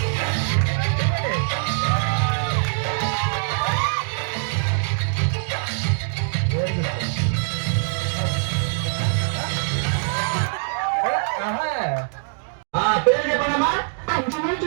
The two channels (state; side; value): silent; left; 63 dB below the other